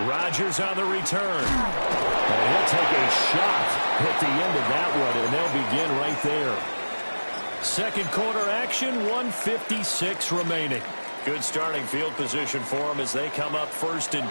Rodgers on the return. And he'll take a shot at the end of that one, and they'll begin right there. 2nd quarter action, 1:56 remaining. Good starting field position for them as they come up 1st and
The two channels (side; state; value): both; inverted; correlation -1.00